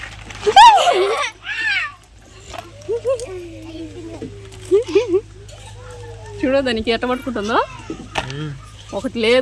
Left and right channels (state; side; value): identical; both; correlation 1.00